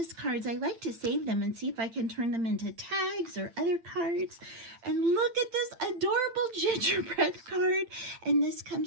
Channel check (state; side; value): late; left; 8.8 ms